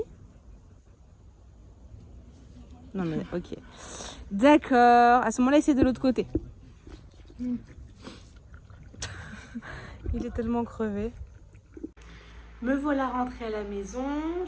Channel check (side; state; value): both; identical; correlation 1.00